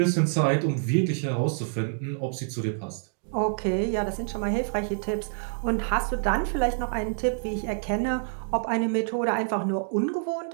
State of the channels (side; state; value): left; silent; digital silence